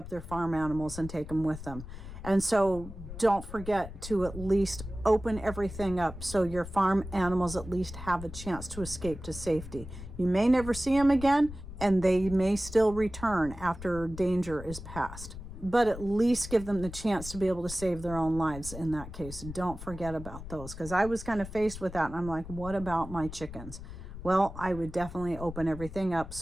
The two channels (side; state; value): left; noise; rumble, 12 dB below the sound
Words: their farm animals and take them with them. And so don't forget to at least open everything up so your farm animals at least have a chance to escape to safety. You may never see them again, and they may still return after danger is past. But at least give them the chance to be able to save their own lives in that case. Don't forget about those, because I was kind of faced with that, and I'm like, what about my chickens? Well, I would definitely open everything up